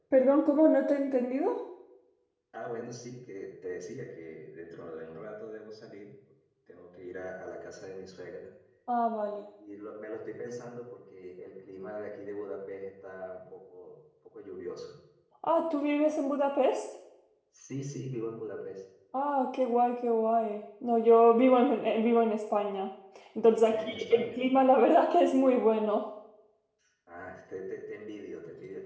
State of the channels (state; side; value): identical; both; correlation 1.00